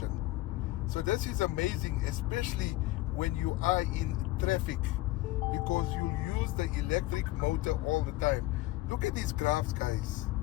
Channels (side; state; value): right; quieter; 18.0 dB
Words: So this is amazing, especially when you are in traffic, because you use the electric motor all the time. Look at these graphs, guys.